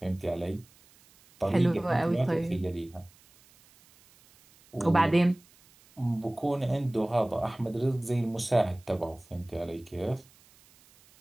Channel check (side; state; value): right; noise; hiss, 28 dB below the sound